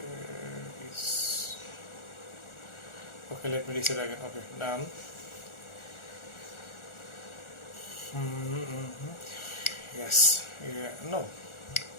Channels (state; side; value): late; right; 1.4 ms